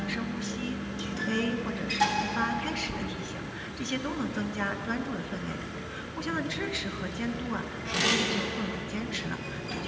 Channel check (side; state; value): both; identical; correlation 1.00